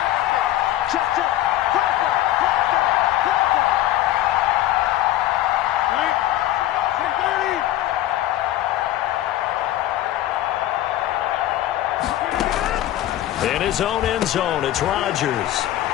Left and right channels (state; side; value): quieter; right; 13.9 dB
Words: In his own end zone, it's Rodgers.